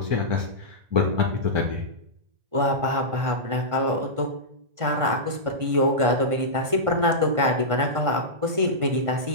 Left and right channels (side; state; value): left; late; 1.5 ms